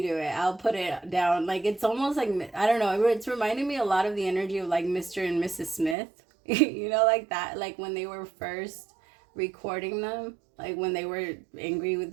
do it. I'll put it down. Like, it's almost like, I don't know. It's reminding me a lot of the energy of like Mr. and Mrs. Smith. You know, like that. Like when they were first recording them, like when they were angry with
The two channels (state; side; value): drops out; left; at 6.0 s